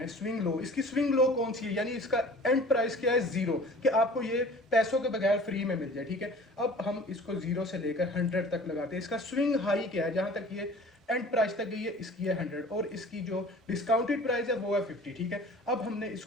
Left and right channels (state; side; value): normal; both; correlation 0.45